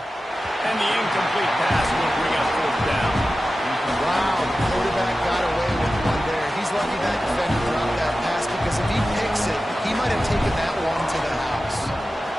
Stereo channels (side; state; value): both; normal; correlation 0.94